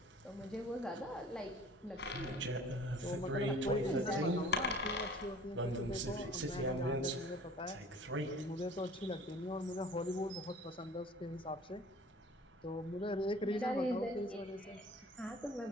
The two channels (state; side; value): normal; both; correlation 0.48